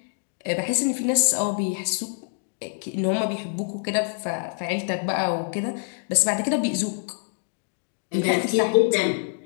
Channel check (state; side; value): silent; right; 57 dB below the other